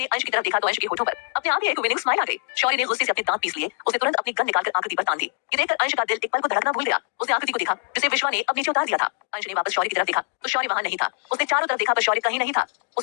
अंश की तरफ देखा तो अंश के होठों पर अपने आप ही एक विनिंग स्माइल आ गई। शौर्य ने गुस्से से अपने दांत पीस लिए। उसने तुरंत अपनी गन निकालकर आकृति पर तान दी। ये देखकर अंश का दिल एक पल को धड़कना भूल गया। उसने आकृति को देखा जिसे विश्वा ने अब नीचे उतार दिया था। अंश ने वापस शौर्य की तरफ देखा तो शौर्य वहां नहीं था। उसने चारों तरफ देखा पर शौर्य कहीं नहीं था।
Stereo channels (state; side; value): silent; right; digital silence